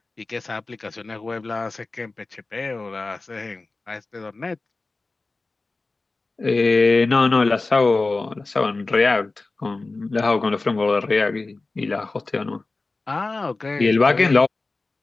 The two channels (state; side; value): quieter; right; 3.5 dB